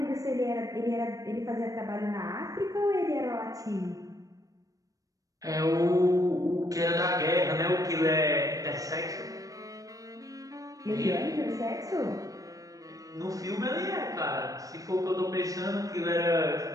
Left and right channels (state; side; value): late; left; 0.17 ms